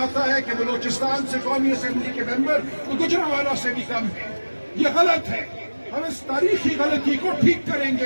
है कि बलोचिस्तान से कौमी असेंबली के मेंबर तो गुजरांवाला से भी कम है। ये गलत है। हम इस तारीखी गलती को ठीक करेंगे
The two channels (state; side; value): inverted; both; correlation -1.00